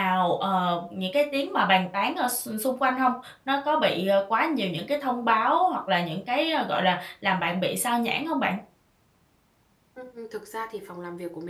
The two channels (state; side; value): identical; both; correlation 1.00